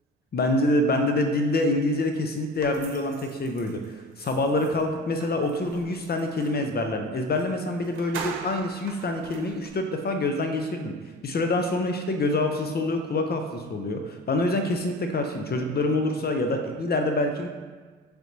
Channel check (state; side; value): normal; both; correlation 0.35